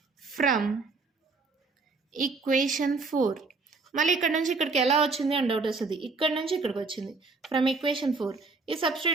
ఫ్రమ్ ఈక్వేషన్ 4 మళ్ళీ ఇక్కడ నుంచి ఇక్కడికి ఎలా వచ్చింది అని డౌట్ వస్తుంది. ఇక్కడ నుంచి ఇక్కడికి వచ్చింది. ఫ్రమ్ ఈక్వేషన్ 4 ఇది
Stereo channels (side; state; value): left; quieter; 4.0 dB